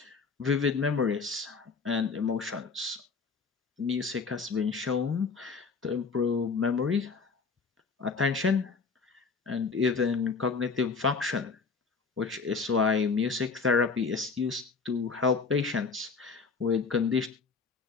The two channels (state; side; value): quieter; right; 4.8 dB